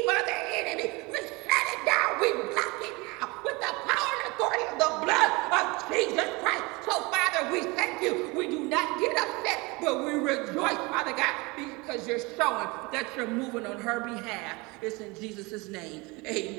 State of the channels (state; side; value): quieter; left; 25.5 dB